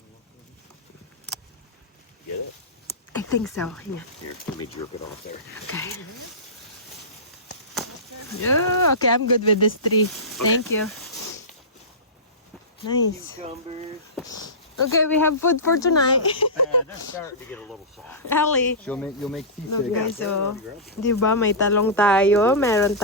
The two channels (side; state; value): both; normal; correlation -0.20